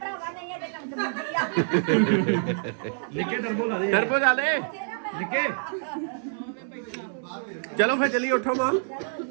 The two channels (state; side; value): silent; left; 60 dB below the other